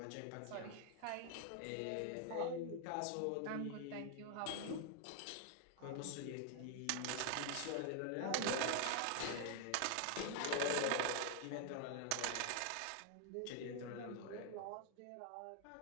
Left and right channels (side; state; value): both; different; correlation 0.00